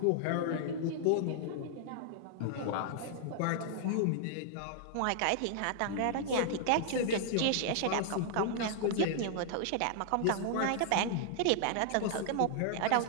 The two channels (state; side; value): different; both; correlation -0.01